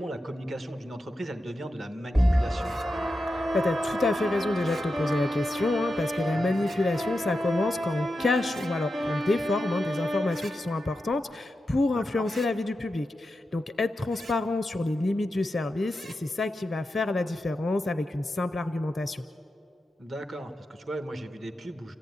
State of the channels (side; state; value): both; normal; correlation 0.90